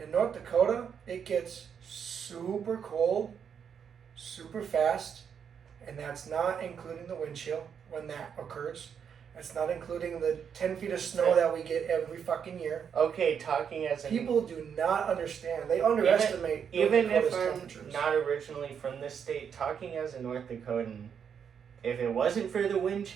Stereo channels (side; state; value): left; quieter; 7.5 dB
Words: In North Dakota, it gets super cold, super fast, and that's not including the wind chill when that occurs. That's not including the 10 feet of snow that we get every fucking year. Okay, talking as a... People do not understand. They underestimate even if temperatures. I'm not originally from this state, talking as a North Dakotan, if it wasn't for the wind